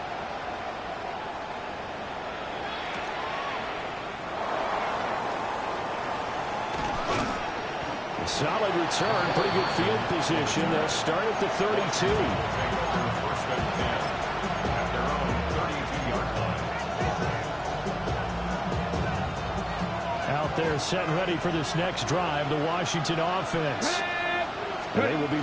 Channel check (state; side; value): identical; both; correlation 1.00